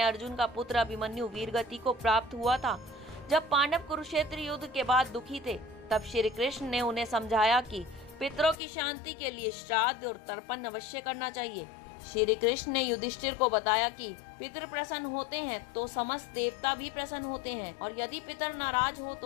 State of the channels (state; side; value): drops out; right; at 8.6 s